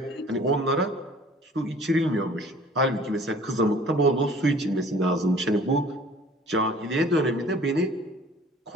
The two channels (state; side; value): normal; both; correlation 0.51